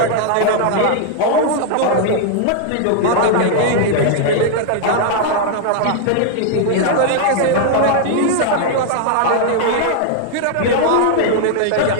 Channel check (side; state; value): both; different; correlation 0.00